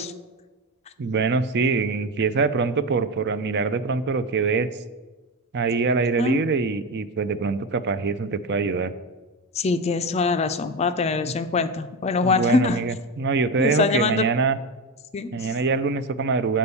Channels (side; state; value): both; normal; correlation 0.17